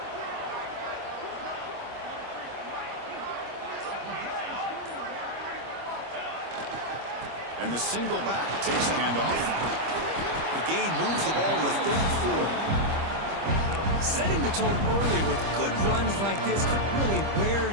And the single back takes the handoff. The gain moves the ball to the 34. Setting the tone early with good runs like this could really wear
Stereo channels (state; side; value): late; left; 25 ms